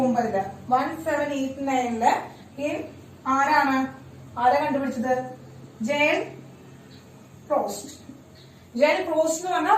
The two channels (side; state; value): both; identical; correlation 1.00